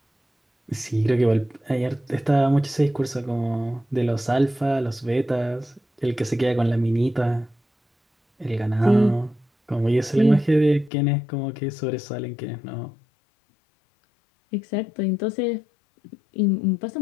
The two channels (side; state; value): right; drops out; at 10.9 s